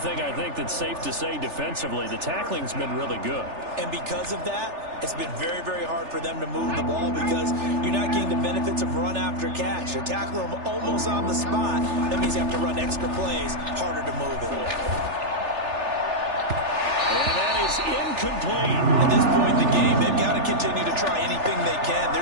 I think that's safe to say defensively, the tackling's been really good. And because of that, it's been very, very hard for them to move the ball because you're not getting the benefits of run after catch. You're tackling them almost on the spot. That means you have to run extra plays, harder to move it. And that is incomplete. At this point in the game, they've got to continue to try anything they can. They're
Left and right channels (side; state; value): left; late; 3.4 ms